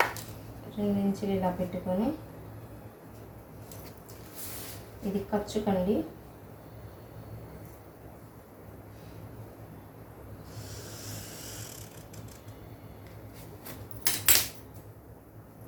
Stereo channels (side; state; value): both; identical; correlation 1.00